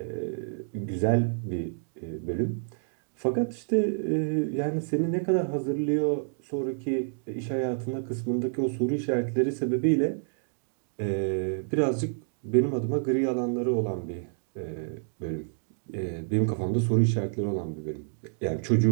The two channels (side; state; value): left; silent; digital silence